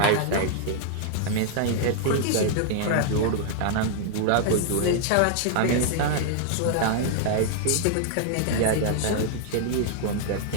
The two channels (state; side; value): different; both; correlation 0.00